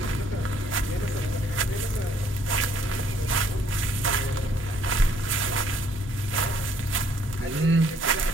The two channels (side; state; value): both; normal; correlation 0.64